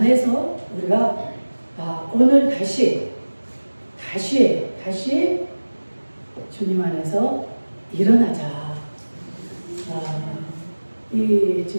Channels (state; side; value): inverted; both; correlation -1.00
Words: 우리가 오늘 다시 주님 안에서 일어나자. 이